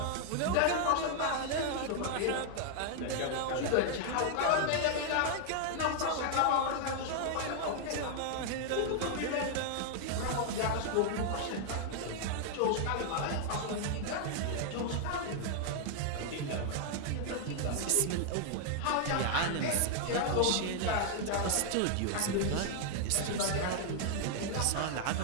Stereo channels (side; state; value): both; different; correlation 0.00